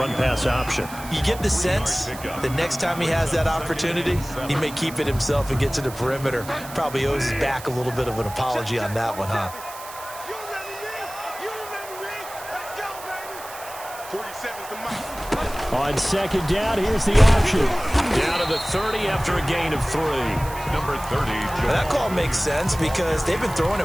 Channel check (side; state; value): right; noise; hiss, 15 dB below the sound